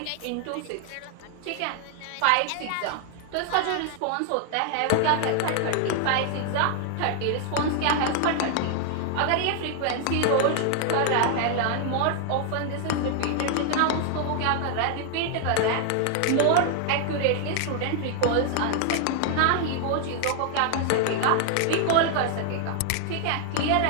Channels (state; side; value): different; both; correlation 0.00